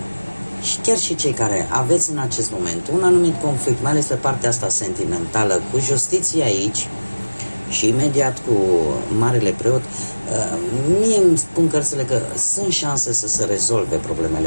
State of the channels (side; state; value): both; inverted; correlation -1.00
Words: și chiar și cei care aveți în acest moment un anumit conflict, mai ales pe partea asta sentimentală, cu justiția aici și imediat cu Marele Preot, mie îmi spun cărțile că sunt șanse să se rezolve